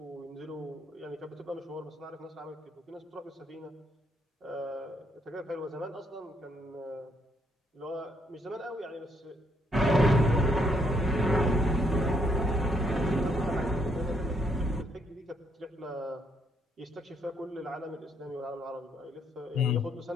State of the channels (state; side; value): normal; both; correlation 0.73